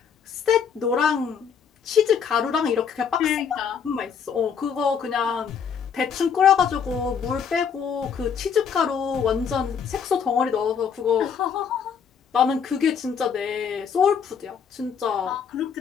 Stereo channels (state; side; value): quieter; right; 7.0 dB